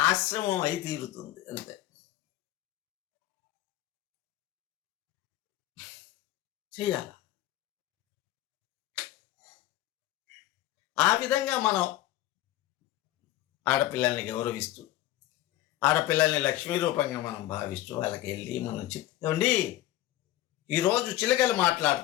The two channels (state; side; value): quieter; right; 14.8 dB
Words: ఆశ్రమం అయి తీరుతుంది. అంతే. చెయ్యాల. ఆ విధంగా మనం ఆడపిల్లల్ని గౌరవిస్తూ, ఆడపిల్లల్ని లక్ష్మీ రూపంగా మనం భావిస్తూ వాళ్ళకి వెళ్ళి మనం చెప్తామండి, ఈరోజు చిలకలు